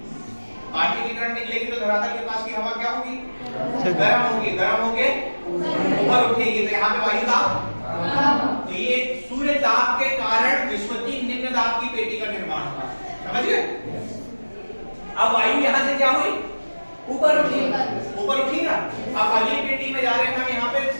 पार्थिव विकिरण निकलेगी, तो धरातल के पास की हवा क्या होगी, गर्म होगी, गर्म होके ऊपर उठेगी, तो यहाँ पे वायु दाब। तो ये सूर्य दाब के कारण विषुवतीय निम्न दाब की पेटी का निर्माण हुआ, समझ गए। अब वायु यहाँ से क्या हुई, ऊपर उठी, ऊपर उठी ना। अब अगली पेटी में जा रहे हैं हम, यहाँ पे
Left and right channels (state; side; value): inverted; both; correlation -1.00